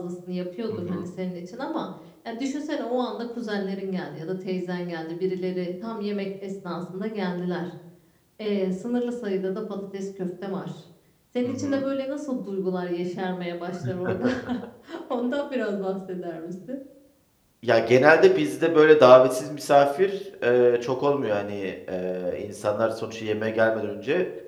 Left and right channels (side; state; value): both; identical; correlation 1.00